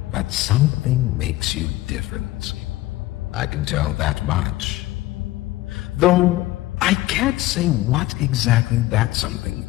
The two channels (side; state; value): right; quieter; 17.1 dB